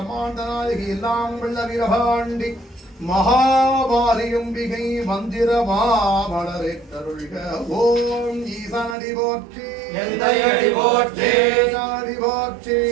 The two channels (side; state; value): left; drops out; at 9.0 s